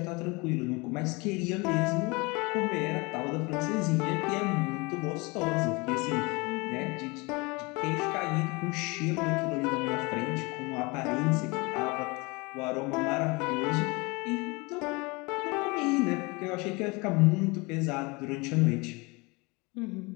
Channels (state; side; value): quieter; right; 26.4 dB